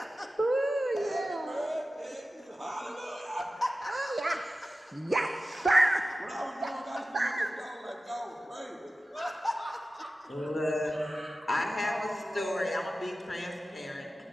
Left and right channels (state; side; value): normal; both; correlation 0.95